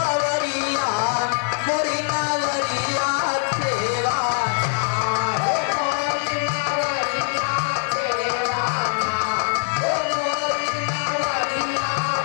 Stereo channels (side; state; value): right; silent; digital silence